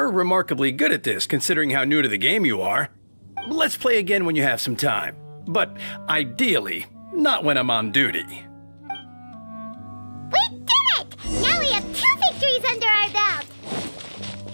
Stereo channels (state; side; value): inverted; both; correlation -1.00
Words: remarkably good at this, considering how new to the game you are. Let's play again when you have some time. But ideally, not when I'm on duty. We did it! Now we have 2 victories under our belt!